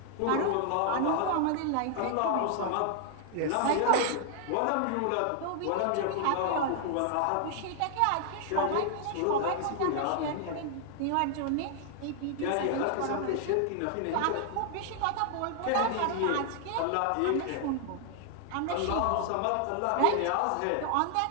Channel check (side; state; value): both; different; correlation 0.00